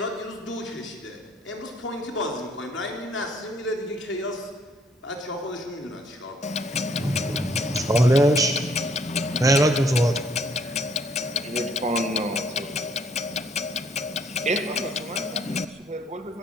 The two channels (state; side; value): normal; both; correlation 0.65